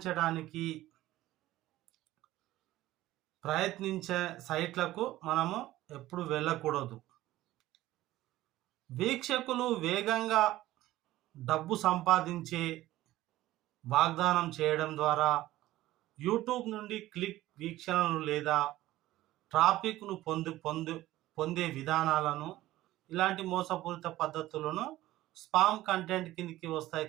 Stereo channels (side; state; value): left; quieter; 15.8 dB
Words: ప్రయత్నించే సైట్లకు మనము ఎప్పుడు వెళ్ళకూడదు. వీక్షకులు వేగంగా డబ్బు సంపాదించే వాగ్దానం చేయడం ద్వారా యూట్యూబ్ నుండి క్లిక్ వీక్షణలు లేదా ట్రాఫిక్ను పొందే విధానాలను, ఇలాంటి మోసపూరిత పద్ధతులను స్పామ్ కంటెంట్ కిందకి వస్తాయి.